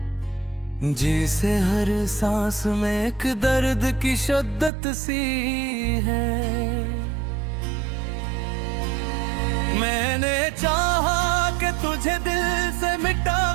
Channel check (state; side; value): drops out; left; at 4.7 s